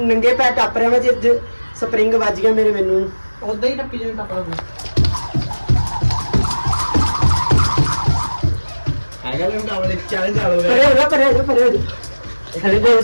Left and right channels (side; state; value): both; inverted; correlation -1.00